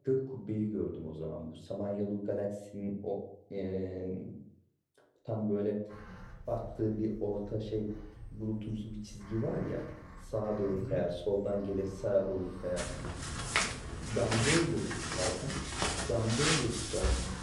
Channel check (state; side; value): identical; both; correlation 1.00